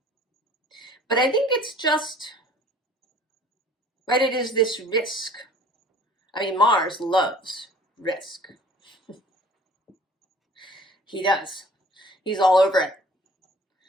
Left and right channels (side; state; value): both; normal; correlation 0.50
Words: But I think it's just, right, it is this risk. I mean, Mars loves risk. He does. He's all over it.